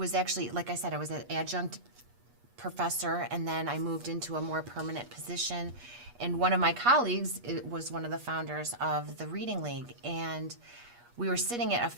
actually, like I said, I was an adjunct professor, and then I moved into a more permanent position. And one of my colleagues was one of the founders of the Reading League, and we were sitting at a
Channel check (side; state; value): left; late; 8.3 ms